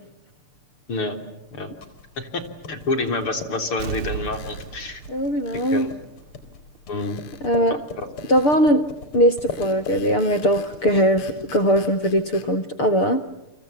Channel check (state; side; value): late; right; 6.8 ms